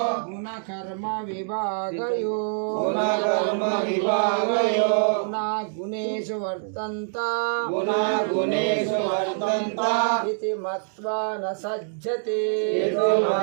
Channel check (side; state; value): left; silent; digital silence